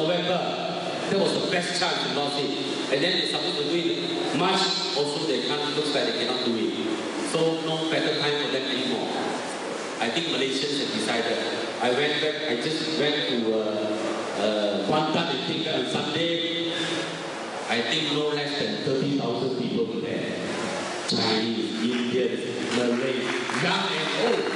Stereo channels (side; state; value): both; identical; correlation 1.00